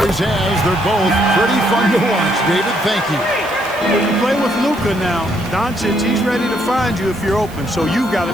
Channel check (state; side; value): noise; right; hiss, 21 dB below the sound